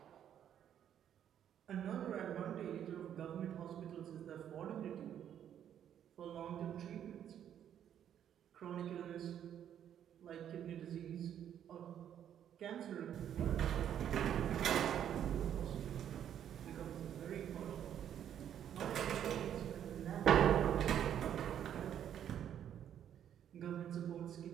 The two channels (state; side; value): quieter; left; 9.8 dB